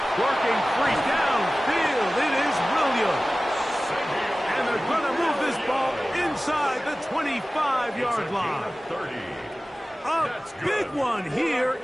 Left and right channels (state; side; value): normal; both; correlation 0.97